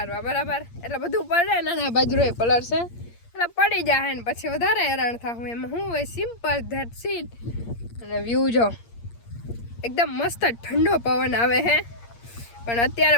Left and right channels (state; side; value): late; right; 8.6 ms